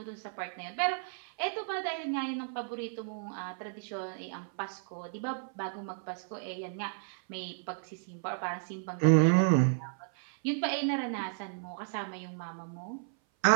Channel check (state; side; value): silent; left; 56 dB below the other